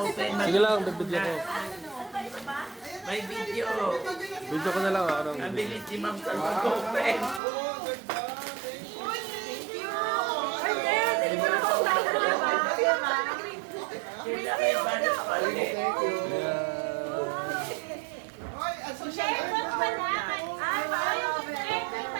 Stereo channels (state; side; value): drops out; left; at 7.4 s